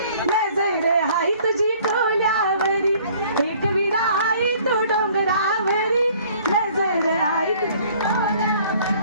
नजर आई तुझी कोल्यावरी एकविरा आई तो डोंगरावरी नजर आई तुझी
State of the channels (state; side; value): inverted; both; correlation -0.55